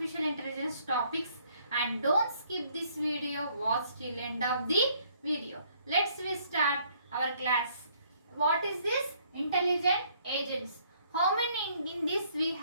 intelligence topics, and don't skip this video, watch till end of the video. Let's start our class. What is this? Intelligent agents. How many in this we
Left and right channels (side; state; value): both; inverted; correlation -0.64